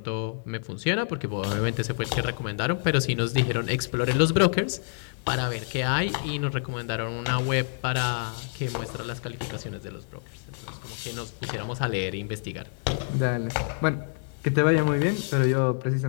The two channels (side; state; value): right; silent; digital silence